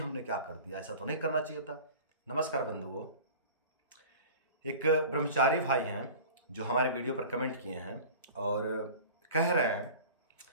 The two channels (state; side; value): inverted; both; correlation -0.39